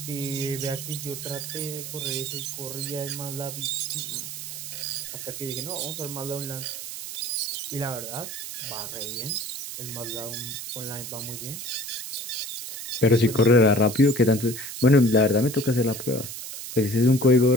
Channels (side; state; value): right; noise; hiss, 8 dB below the sound